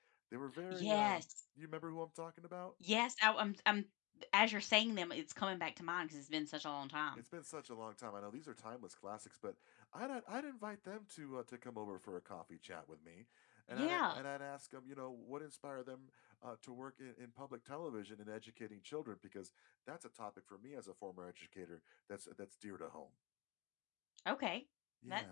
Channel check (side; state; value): right; quieter; 24.8 dB